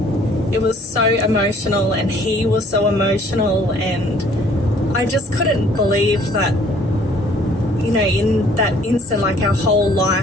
It was so emotional, and he was so emotional, and I just couldn't believe that, you know, in that instant, like, our whole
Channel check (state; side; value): normal; both; correlation 0.58